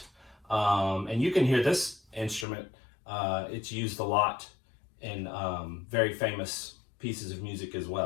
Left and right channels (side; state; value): right; drops out; at 2.5 s